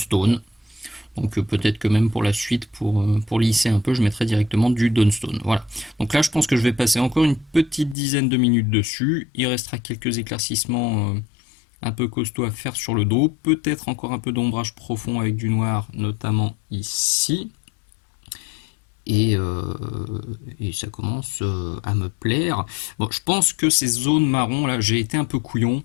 Donc peut-être que même pour la suite, pour lisser un peu, je mettrai directement du Dawnstone. Voilà. Donc là, je pense que je vais passer encore une petite dizaine de minutes dessus. Il restera quelques éclaircissements un peu costauds à faire sur le dos. Peut-être encore un peu d'ombrage profond avec du noir, notamment ici. Et ça commence à me plaire. Bon, je pense que ces zones marron, là, j'ai été un peu couillon.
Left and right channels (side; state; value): right; drops out; at 8.0 s